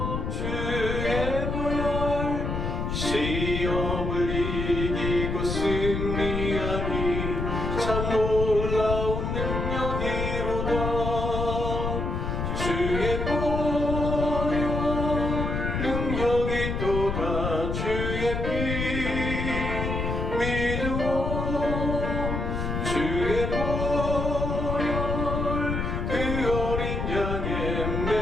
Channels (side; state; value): left; noise; rumble, 2 dB below the sound